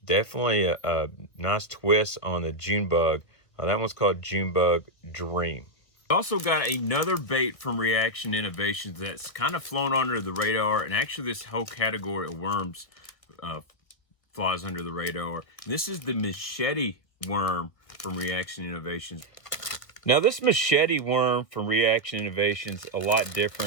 definitely a nice twist on the Junebug. That one's called Junebug Dream. Also got another bait from Reaction Innovations that's kind of flown under the radar, and actually this whole category of worms flies under the radar. And this is the machete worm from Reaction Innovations. Now this machete worm from Reaction Innovations a lot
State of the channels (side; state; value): right; late; 1.5 ms